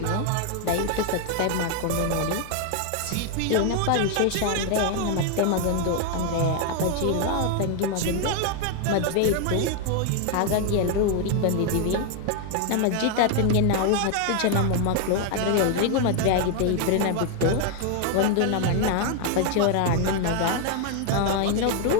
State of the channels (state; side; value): different; both; correlation 0.01